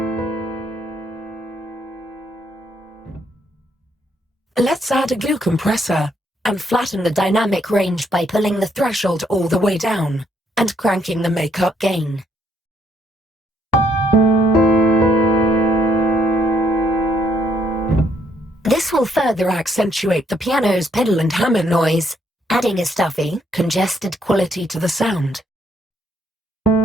Let's add a glue compressor and flatten the dynamic range by pulling the threshold all the way down and cranking the makeup gain. This will further accentuate the piano's pedal and hammer noise, adding a stuffy, congested quality to the sound.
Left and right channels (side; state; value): both; normal; correlation 0.71